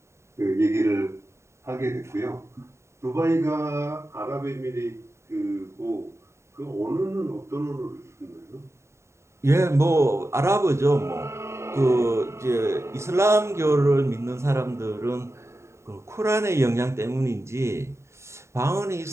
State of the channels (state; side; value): late; left; 0.13 ms